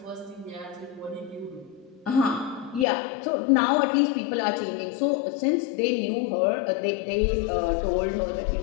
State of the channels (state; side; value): drops out; right; at 2.9 s